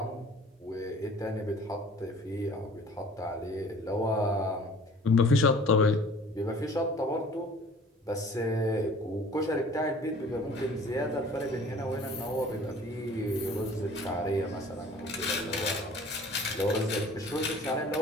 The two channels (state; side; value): normal; both; correlation 0.49